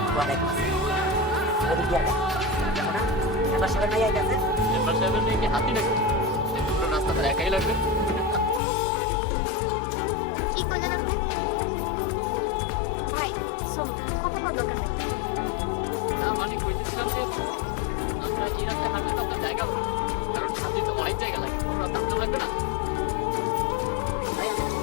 ওয়ালাইকুম আসসালাম। ওদিক দিয়ে আগে দেখো না, মেম্বার সাহেবের মাইয়া গেছে। মেম্বার সাহেবের মেয়ে কি হাতি নাকি? পুরো রাস্তা তার একাই লাগবে। কি করলেন আপনি? ভাই শোনো, কথা বল দরকার নেই। না মানে কইতেছিলাম যে আমরা এই রাস্তায় হাঁটলে তো আপনার জায়গা হবে না। কারণ হাতি তো অনেক জায়গা লাগে, তোমরা দাঁড়াতে লাগবে না। ভাই আমি না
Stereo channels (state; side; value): drops out; right; at 8.6 s